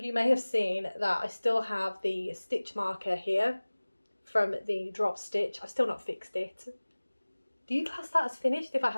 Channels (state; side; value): inverted; both; correlation -1.00